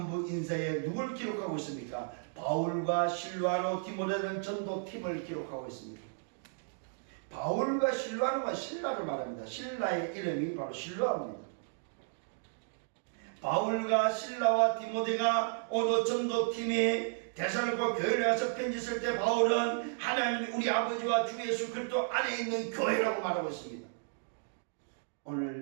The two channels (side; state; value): left; silent; digital silence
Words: 인사에 누굴 기록하고 있습니까? 바울과 실로아노 디모데는 전도팀을 기록하고 있습니다. 바울과 실로아노가 신라를 말합니다. 신라의 이름이 바로 실로아입니다. 바울과 실라와 디모데가 오늘 전도팀이 데살로니가 교회를 가서 편지 쓸 때 바울은 하나님 우리 아버지와 주 예수 그리스도 안에 있는 교회라고 말하고 있습니다.